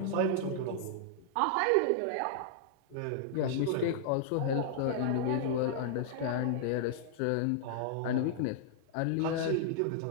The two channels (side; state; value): both; different; correlation -0.01